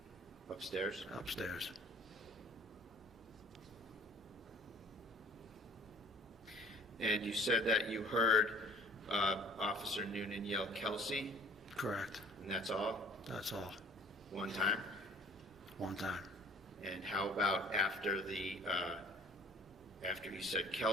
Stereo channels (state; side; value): normal; both; correlation 0.51